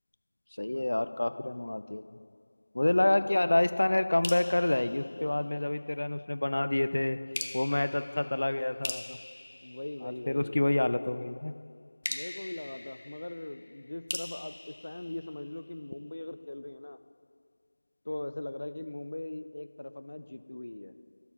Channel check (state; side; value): inverted; both; correlation -1.00